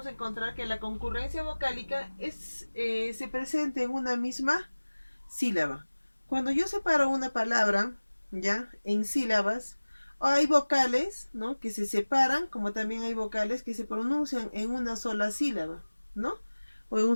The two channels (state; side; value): inverted; both; correlation -1.00